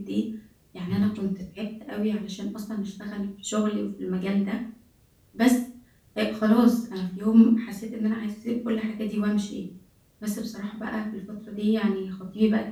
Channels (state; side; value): identical; both; correlation 1.00